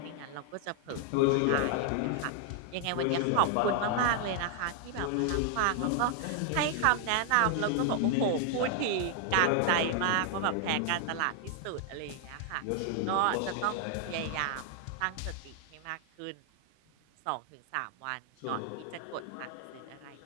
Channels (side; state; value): both; different; correlation 0.00